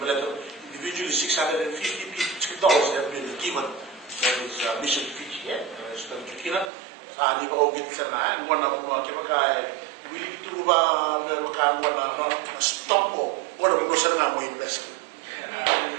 individually $650 have been given. That is mission Fiji. So Kina, di ba ogit sana? One of mga kaya willing to ba mga one stop mo. One of mga sana mo invest.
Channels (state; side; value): drops out; left; at 6.7 s